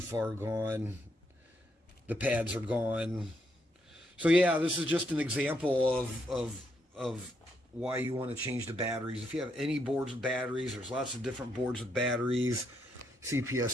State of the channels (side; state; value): both; normal; correlation 0.77